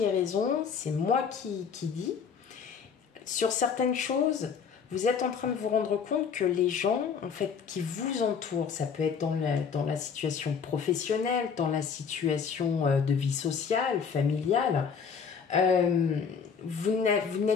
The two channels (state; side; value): quieter; right; 6.4 dB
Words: ai raison, c'est moi qui dis. Sur certaines choses, vous êtes en train de vous rendre compte que les gens, en fait, qui vous entourent, ça peut être dans la situation professionnelle, dans la situation de vie sociale, familiale, vous